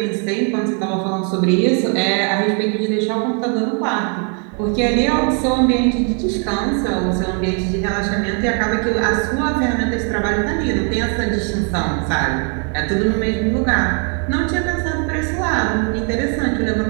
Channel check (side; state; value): left; quieter; 39.8 dB